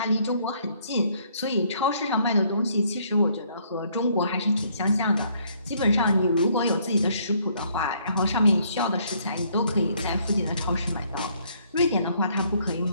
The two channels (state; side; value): inverted; both; correlation -0.66